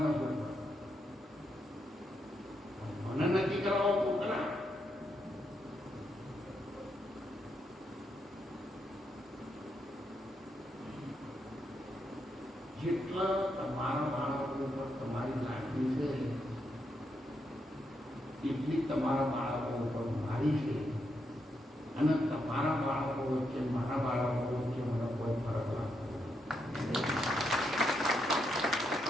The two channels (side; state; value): both; normal; correlation 0.81